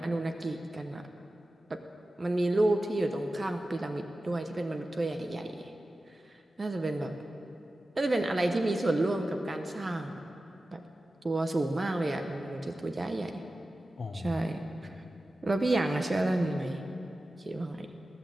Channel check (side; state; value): both; normal; correlation 0.95